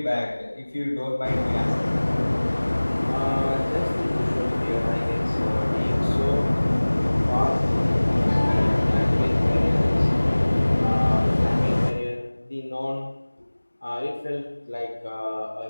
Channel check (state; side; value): inverted; both; correlation -1.00